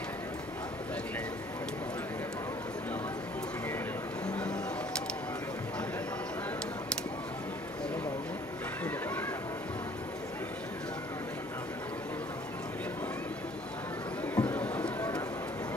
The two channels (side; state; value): both; normal; correlation 0.56